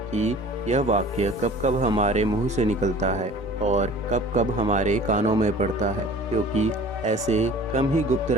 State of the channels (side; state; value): both; normal; correlation 0.45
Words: कि यह वाक्य कब कब हमारे मुंह से निकलता है और कब कब हमारे कानों में पड़ता है, क्योंकि ऐसे कम ही गुप्त